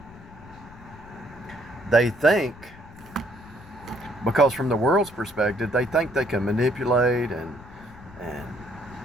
They think, because from the world's perspective, they think they can manipulate and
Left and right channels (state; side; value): noise; left; rumble, 20 dB below the sound